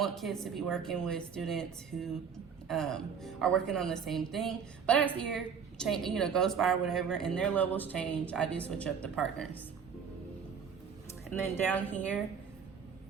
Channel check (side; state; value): left; quieter; 6.8 dB